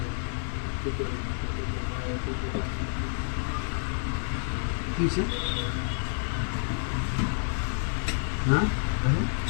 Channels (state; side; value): silent; right; digital silence